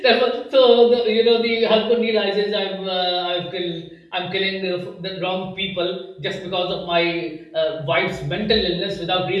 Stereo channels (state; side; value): identical; both; correlation 1.00